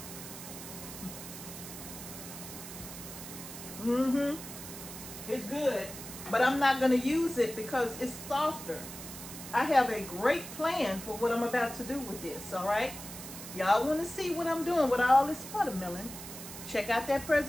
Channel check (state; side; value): noise; right; hiss, 11 dB below the sound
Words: It's good, but I'm not going to use it because it's softer. I have a great plan for what I'm about to do with this, all right? Y'all want to see what I'm doing with all this watermelon? Check out that